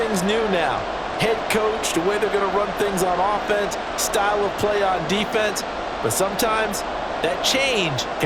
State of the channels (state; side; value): identical; both; correlation 1.00